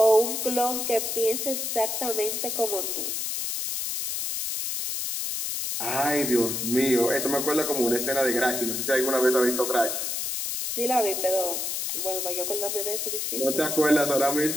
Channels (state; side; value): noise; left; hiss, 2 dB below the sound